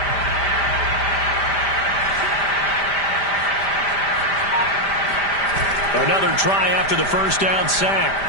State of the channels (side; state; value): right; late; 5.0 ms